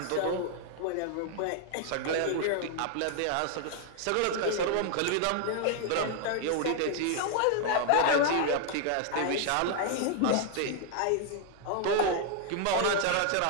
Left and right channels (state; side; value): different; both; correlation 0.00